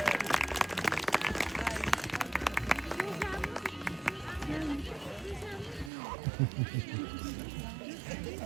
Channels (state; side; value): drops out; left; at 5.9 s